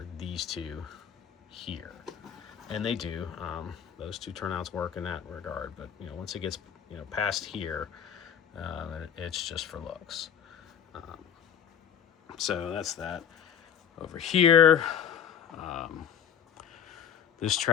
these two here, and they do. Those two turnouts work in that regard. But once it gets past here, it's just for looks. So that's that. Over here, this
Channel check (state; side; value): quieter; right; 8.4 dB